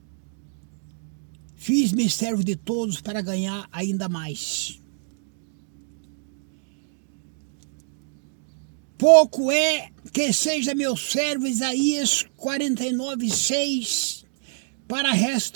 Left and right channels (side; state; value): left; silent; digital silence